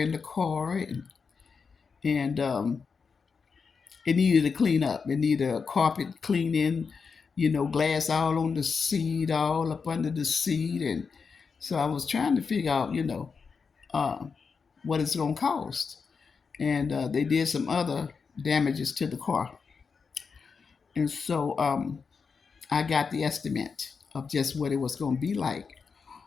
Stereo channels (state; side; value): quieter; right; 5.4 dB